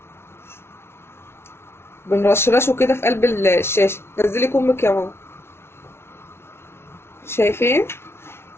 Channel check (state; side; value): late; right; 0.12 ms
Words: بنرشرشه كده في قلب الشاشه. نزلي كمك يا ماما. شايفين